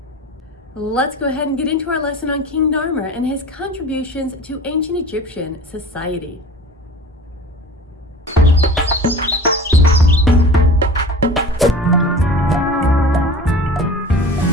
Let's go ahead and get into our lesson on King Narmer and his contributions to ancient Egyptian society.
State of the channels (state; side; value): normal; both; correlation 0.39